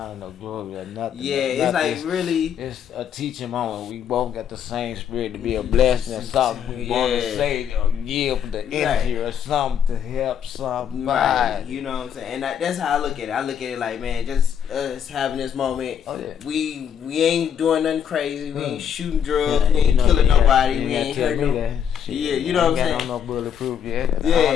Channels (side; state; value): right; quieter; 8.5 dB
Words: no glory, or nothing. Yeah, it's like really. It's a teaching moment. We both got the same spirit to be a blessing and something we want to say or give the energy or something to help somebody. Right. You know what I'm saying? And that's how I look at it. I look at it like, man, just us having this moment. Oh, yeah. We ain't doing nothing crazy. We ain't shooting drugs. We ain't killing nobody. We ain't hurting nobody. Yeah, you know what I'm saying? No bulletproof yet. Yeah,